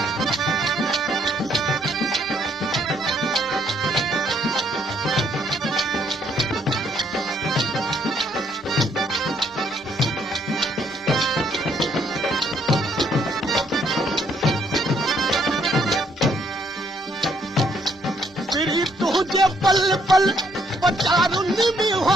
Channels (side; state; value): both; normal; correlation 0.69